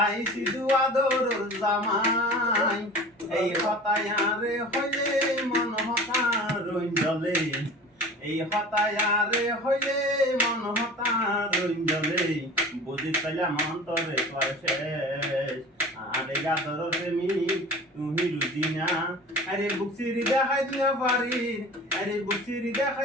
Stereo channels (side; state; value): both; normal; correlation 0.39